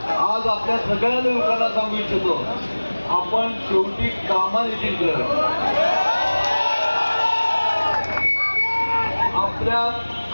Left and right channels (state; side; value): inverted; both; correlation -1.00